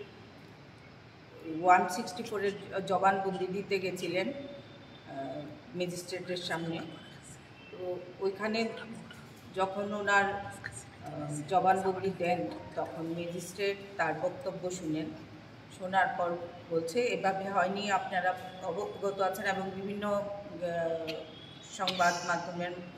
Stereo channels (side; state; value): both; identical; correlation 1.00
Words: 164-এর জবানবন্দি দিতে গেছিলেন ম্যাজিস্ট্রেটের সামনে। তো ওইখানে যখন ওনার জবানবন্দি দেন তখন ম্যাজিস্ট্রেট তার বক্তব্য শোনার পর বলছে এভাবে হয়নি, আপনারা অবগত আছেন এবং বিভিন্ন সংবাদ মাধ্যমের